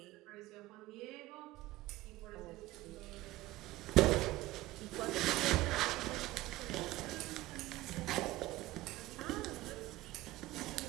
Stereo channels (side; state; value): left; quieter; 17.6 dB